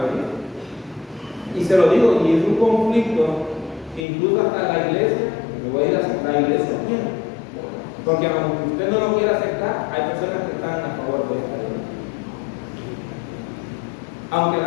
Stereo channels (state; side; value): drops out; right; at 4.0 s